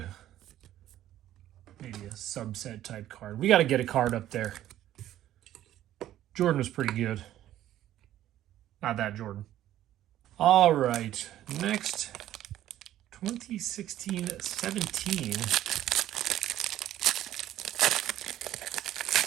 maybe a subset type card, we got to get a card up there. Jordan was pretty good. Not that Jordan. All right, next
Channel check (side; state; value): left; quieter; 12.8 dB